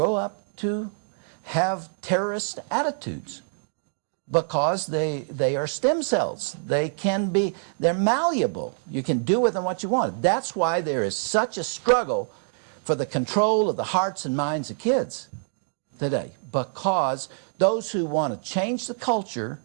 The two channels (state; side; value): silent; left; digital silence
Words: up to have terrorist attitudes because they are stem cells. They're malleable. You can do with them what you want. That's why there is such a struggle for the control of the hearts and minds of kids today, because those who want to change the culture